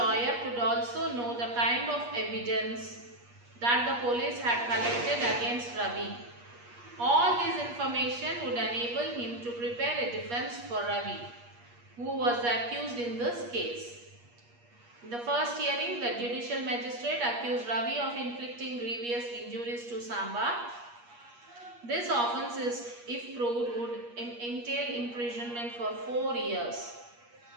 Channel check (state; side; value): late; left; 8.4 ms